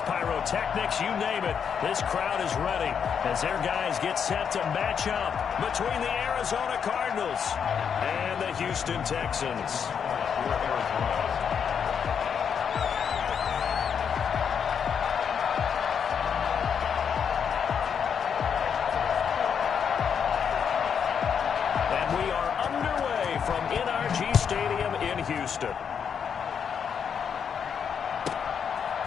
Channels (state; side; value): quieter; right; 7.2 dB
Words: pyrotechnics, you name it. This crowd is ready as their guys get set to match up between the Arizona Cardinals and the Houston Texans. Houston.